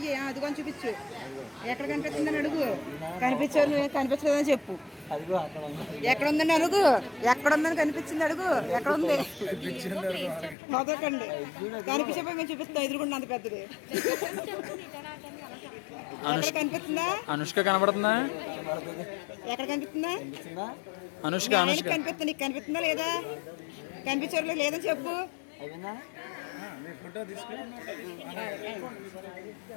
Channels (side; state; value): right; drops out; at 10.6 s